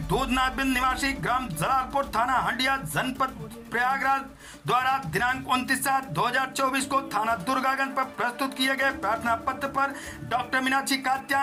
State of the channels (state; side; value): identical; both; correlation 1.00